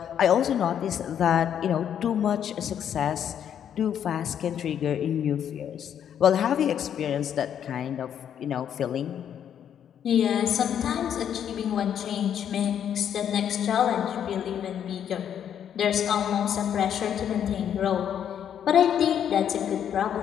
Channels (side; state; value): right; quieter; 9.2 dB